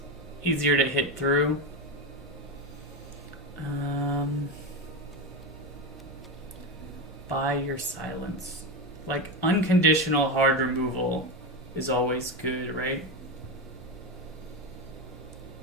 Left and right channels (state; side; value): normal; both; correlation 0.16